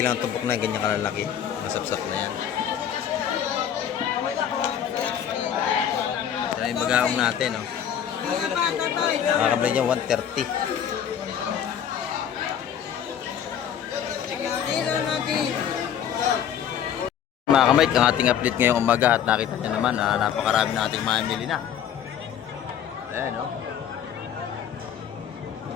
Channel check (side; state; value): right; quieter; 9.1 dB